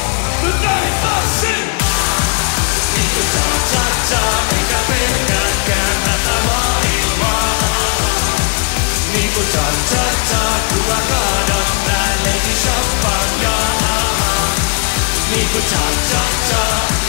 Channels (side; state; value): right; quieter; 36.4 dB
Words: Nyt näin tanssin! Niinku cha-cha-cha, enkä pelkääkään tätä maailmaa. Niinku cha-cha-cha, kun mä kaadan päälleni champagnea. Niinku cha-cha-cha,